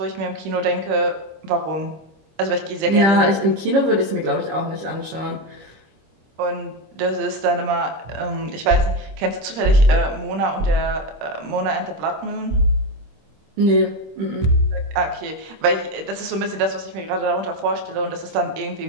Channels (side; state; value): left; late; 26 ms